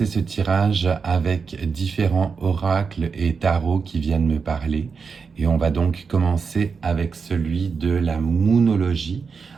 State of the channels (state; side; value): quieter; left; 5.4 dB